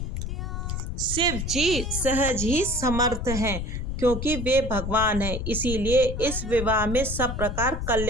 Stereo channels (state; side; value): noise; left; rumble, 4 dB below the sound